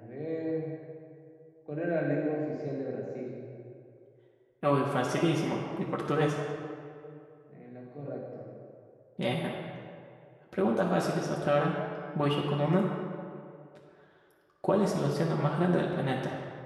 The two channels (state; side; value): identical; both; correlation 1.00